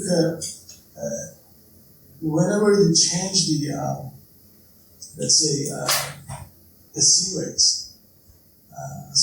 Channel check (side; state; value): both; identical; correlation 1.00